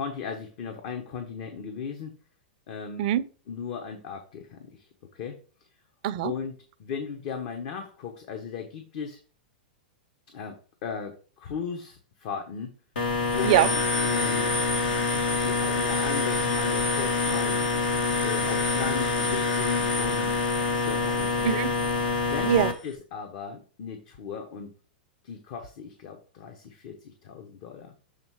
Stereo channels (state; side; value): normal; both; correlation -0.12